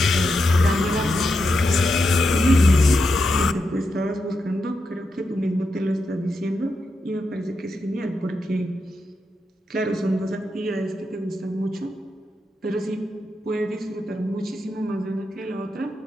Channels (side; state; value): both; normal; correlation 0.86